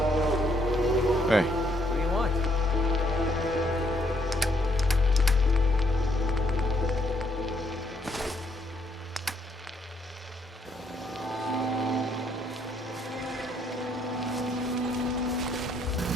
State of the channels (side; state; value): both; normal; correlation 0.71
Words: Hey. What do you want?